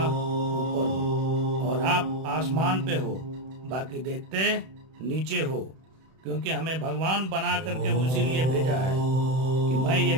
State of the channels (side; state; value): left; late; 31 ms